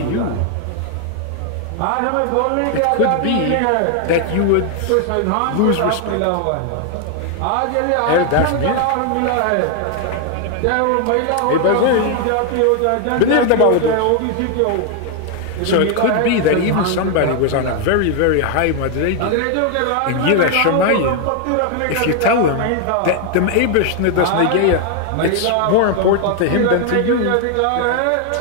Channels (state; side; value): different; both; correlation 0.01